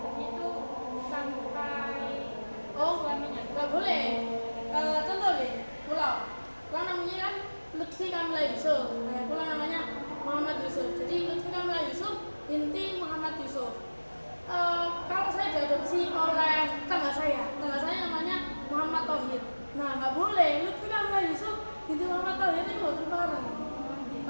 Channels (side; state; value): both; inverted; correlation -1.00